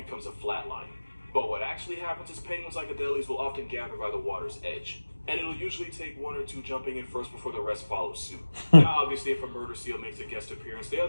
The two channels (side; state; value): both; inverted; correlation -1.00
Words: a flatline. But what actually happens is penguins like Adelies will often gather by the water's edge. And it'll usually take 1 or 2 jumping in first before the rest follow suit. Now, obviously, if a murder seal makes a guest appearance, the